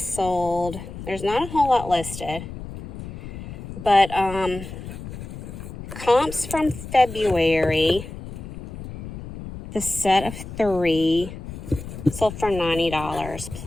there's not a whole lot listed, but comps from February, the set of 3 sold for $90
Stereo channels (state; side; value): noise; left; rumble, 11 dB below the sound